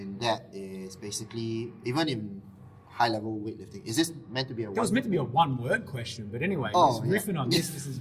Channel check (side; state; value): both; identical; correlation 1.00